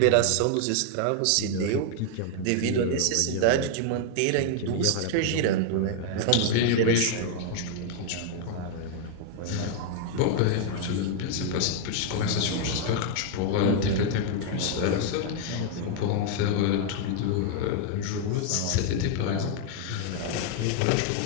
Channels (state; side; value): different; both; correlation 0.00